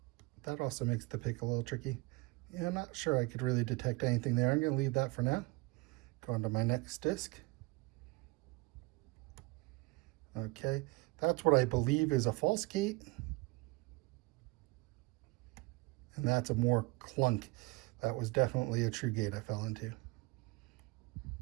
that also makes the pick a little tricky. Yeah, I'm not sure I could really detect anything there. I'm going to leave that for now. Go on to my next disc. Okay, that's what I believe is a false gate. And that's a more clunk. That was definitely a true gate I fell into.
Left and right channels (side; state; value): left; quieter; 24.0 dB